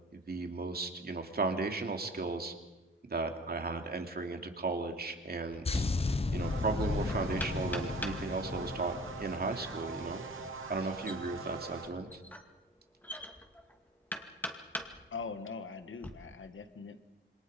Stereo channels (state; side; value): normal; both; correlation 0.43